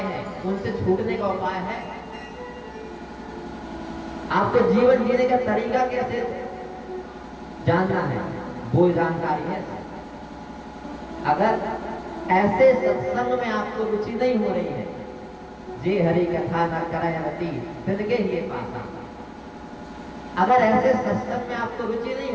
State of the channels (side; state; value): both; identical; correlation 1.00